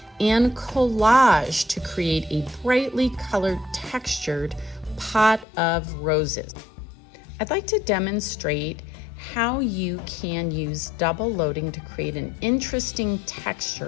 and collage to create a brightly colored textured pot of roses. I'd like to demonstrate how you can use double loading to create an interesting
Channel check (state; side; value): drops out; right; at 5.5 s